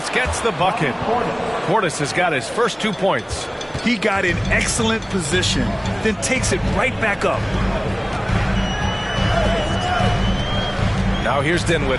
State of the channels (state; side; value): identical; both; correlation 1.00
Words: gets the bucket. Portis has got his first 2 points. He got in excellent position, then takes it right back up. Now here's